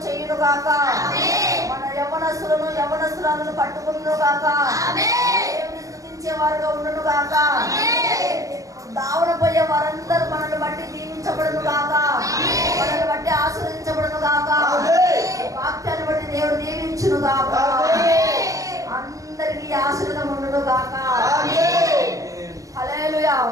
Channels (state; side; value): late; left; 0.16 ms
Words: చేయును గాక. మన యవ్వనస్తులను యవ్వనస్తురాలను పట్టుకును గాక. దేవుని స్తుతించే వారుగా ఉండును గాక. దావన పోయే వారందరూ మనల్ని బట్టి దీవించబడును గాక, మనల్ని బట్టి ఆశీర్వదించబడును గాక, వాక్యాన్ని బట్టి దేవుడు దీవించును గాక. అందరికీ ఆశీర్వాదం ఉండును గాక. హల్లెలూయా.